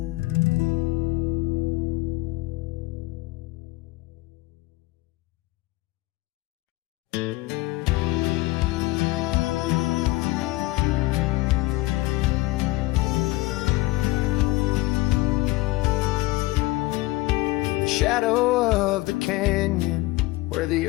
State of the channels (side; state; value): right; quieter; 19.8 dB